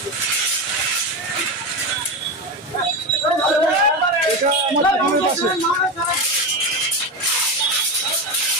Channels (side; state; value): both; normal; correlation 0.18